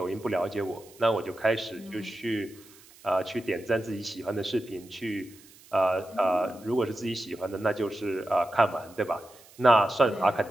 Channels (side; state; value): right; noise; hiss, 24 dB below the sound